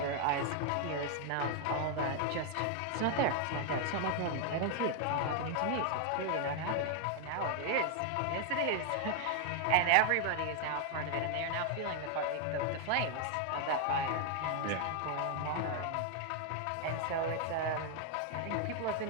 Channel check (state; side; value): different; both; correlation 0.00